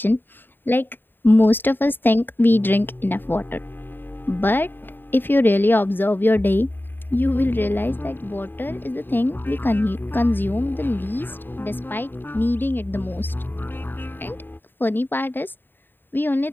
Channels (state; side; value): late; right; 0.094 ms